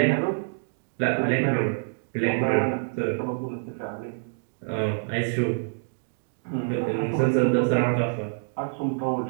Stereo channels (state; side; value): silent; left; digital silence